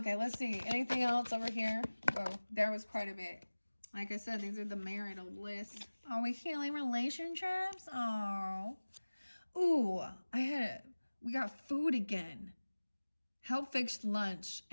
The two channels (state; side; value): inverted; both; correlation -1.00